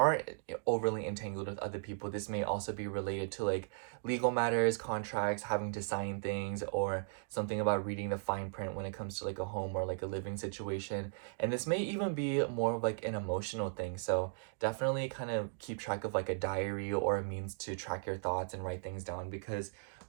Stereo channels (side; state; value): left; silent; digital silence